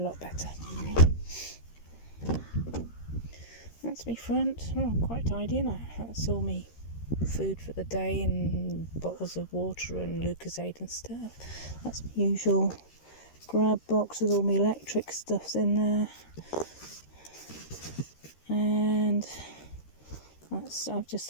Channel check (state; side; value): late; right; 13 ms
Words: lot better. That's me front. Oh, quite tidy, isn't it? That's all me food for the day and bottles of water and Lucozade and stuff. That's my usual grab box with all my electric stuffs in there. And I've